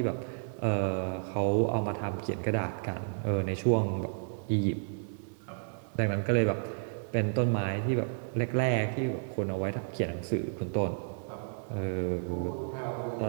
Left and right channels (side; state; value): left; silent; digital silence